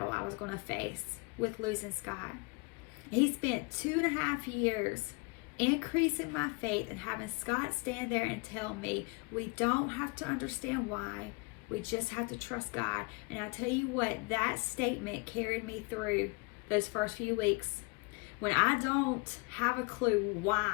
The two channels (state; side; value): quieter; right; 29.9 dB